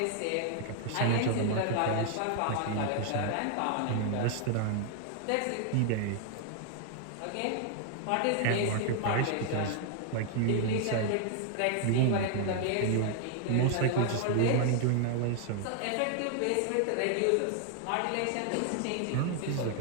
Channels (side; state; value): both; different; correlation 0.00